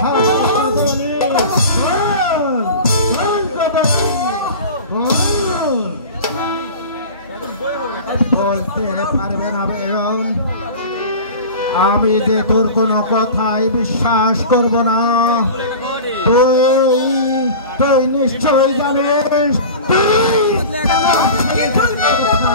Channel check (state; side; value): inverted; both; correlation -0.35